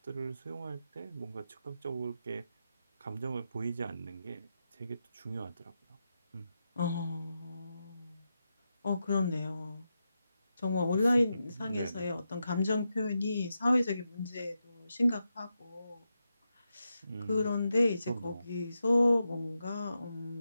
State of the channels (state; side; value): inverted; both; correlation -0.87